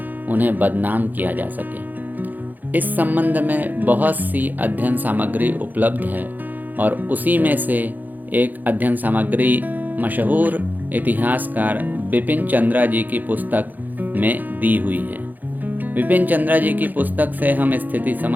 उन्हें बदनाम किया जा सके। इस संबंध में बहुत सी अध्ययन सामग्री उपलब्ध है और उसी में से एक अध्ययन सामग्री मशहूर इतिहासकार बिपिन चंद्रा जी की पुस्तक में दी हुई है। बिपिन चंद्रा जी की पुस्तक से हम स्थिति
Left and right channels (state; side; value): late; left; 0.085 ms